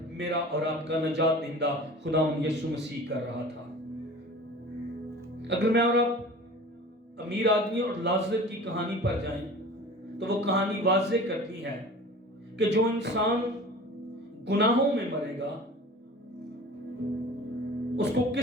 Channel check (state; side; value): normal; both; correlation 0.40